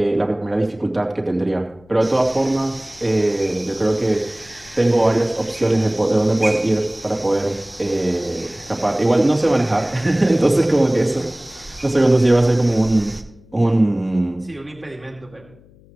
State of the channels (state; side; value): noise; left; hum, 27 dB below the sound